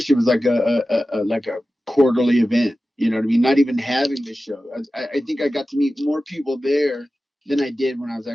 it was like a quarterly event. You know what I mean? Not even having the show. I think I got to meet more people there than I did when I was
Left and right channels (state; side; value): normal; both; correlation 0.95